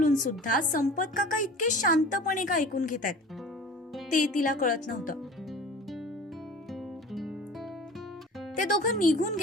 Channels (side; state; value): both; normal; correlation 0.40